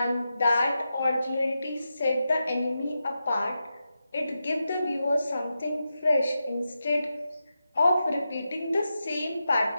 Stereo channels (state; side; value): inverted; both; correlation -0.89